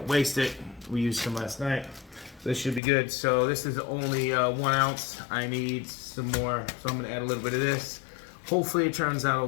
waste it. We used some last night. This should be good. So this is only 1 ounce. I need some more, so I'm gonna add a little bit of this. Hopefully it turns out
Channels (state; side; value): drops out; right; at 2.8 s